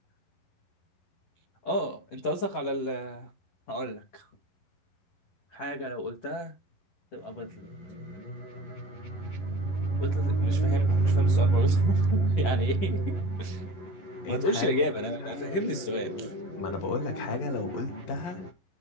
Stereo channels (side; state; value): right; late; 11 ms